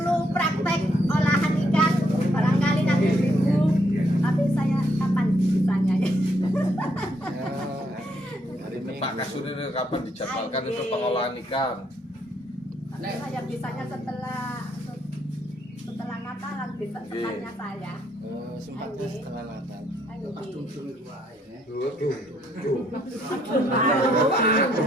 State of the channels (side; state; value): both; normal; correlation 0.72